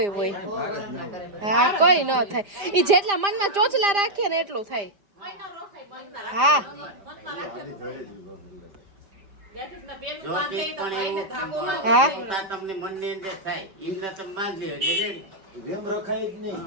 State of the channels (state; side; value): late; left; 4.9 ms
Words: હોય હા કોઈ ન થાય ઈ જેટલા મનમાં ચોચલા રાખીએ ને એટલું થાય હા જોતી પણ એવું હા પોતા તમને મનની અંદર થાય એમને તમે બાંધી લ્યો એટલે ready. એમ રખાય જ નહીં.